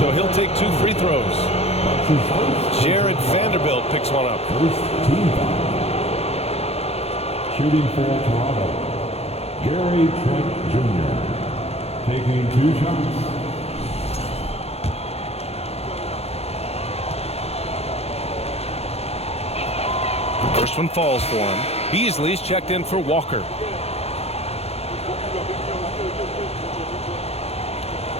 so he'll take 2 free throws. Jared Vanderbilt picks one up. First team foul. Shooting for Toronto, Gary Trent Jr. taking 2 shots. First one falls for him. Beasley's checked in for Walker.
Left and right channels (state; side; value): late; right; 0.30 ms